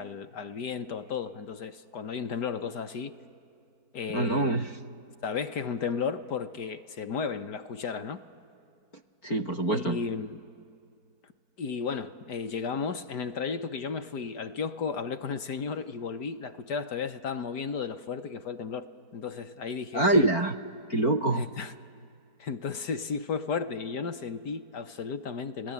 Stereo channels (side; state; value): right; late; 5.0 ms